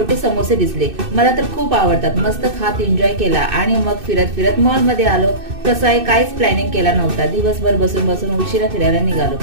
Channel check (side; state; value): left; late; 2.6 ms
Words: समोसे दिसले, मला तर खूप आवडतात. मस्त खात एन्जॉय केला आणि मग फिरत फिरत मॉल मध्ये आलो. कसं आहे, काहीच प्लॅनिंग केला नव्हता. दिवसभर बसून बसून उशिरा फिरायला निघालो,